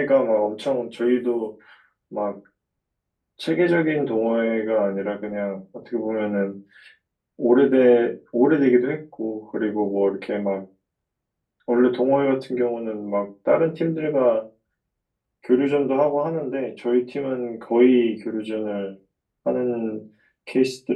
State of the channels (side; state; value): both; identical; correlation 1.00